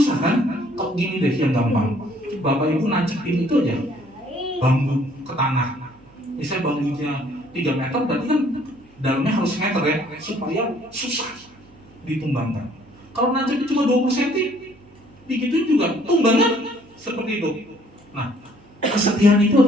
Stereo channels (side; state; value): right; noise; hum, 28 dB below the sound